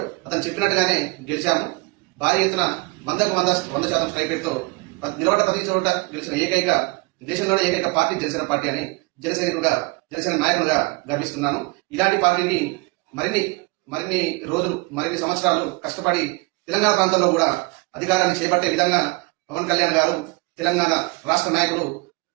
అతను చెప్పినట్టుగానే గెలిచాము. భారీ ఎత్తున 100% స్ట్రైక్ రేట్తో నిలబడ్డ ప్రతి చోట గెలిచిన ఏకైక దేశంలోనే ఏకైక పార్టీ జనసేన పార్టీ అని జనసేన నాయకులుగా గర్విస్తున్నాను. ఇలాంటి పార్టీని మరిన్ని రోజులు మరిన్ని సంవత్సరాలు కష్టపడి తెలంగాణ ప్రాంతంలో కూడా అధికారాన్ని చేపట్టే విధంగా పవన్ కళ్యాణ్ గారు తెలంగాణ రాష్ట్ర నాయకులు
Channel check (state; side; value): quieter; left; 26.3 dB